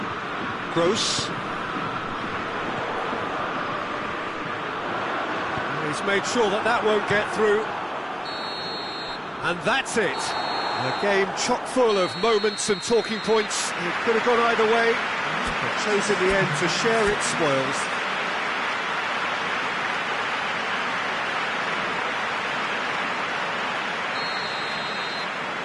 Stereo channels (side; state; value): both; identical; correlation 1.00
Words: Gross. He's made sure that won't get through. And that's it. A game chock full of moments and talking points. It could have gone either way, but chose in the end to share its spoils.